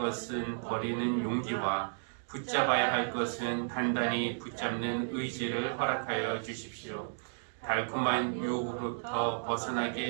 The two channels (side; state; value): left; silent; digital silence